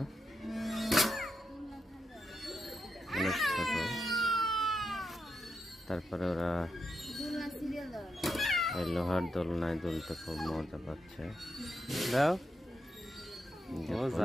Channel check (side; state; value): both; normal; correlation 0.84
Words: অনেক ছোট, তারপরে ওরা এই লোহার দোলনায় দুলতে খুব মজা পাচ্ছে।